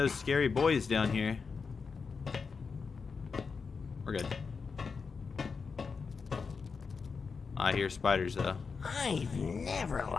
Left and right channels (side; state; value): right; quieter; 5.2 dB